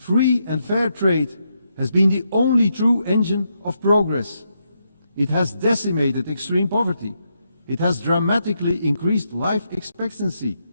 and fair trade has been the only true engine of progress. It has decimated extreme poverty. It has dramatically increased life expectancy.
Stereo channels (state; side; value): inverted; both; correlation -0.81